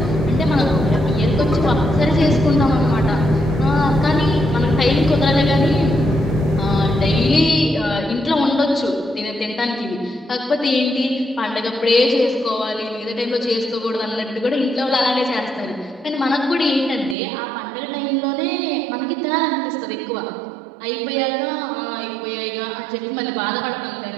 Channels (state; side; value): drops out; left; at 17.2 s